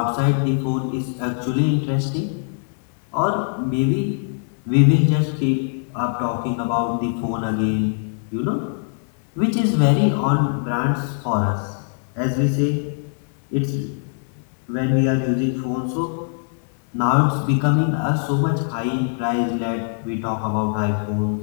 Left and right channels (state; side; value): silent; right; 64 dB below the other